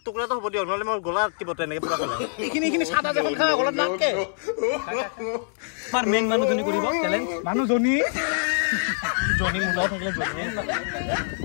টুকুৰা তো হ'ব দিও নহলে মোৰ গলা আটকিব তেনেকে পুৰা গলা এইখিনি সাদা যখন খা গলা নাকে আমাৰ মেইন মানুহজনী কৰিব চ্যালেঞ্জ মানুহজনী জনি মুলা থাকিলে জনি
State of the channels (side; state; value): right; silent; 62 dB below the other